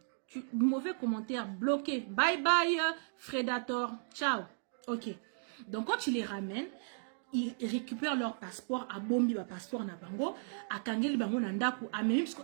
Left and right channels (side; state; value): left; silent; digital silence